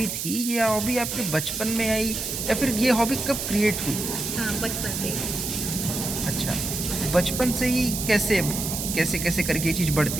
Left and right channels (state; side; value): noise; right; hiss, 4 dB below the sound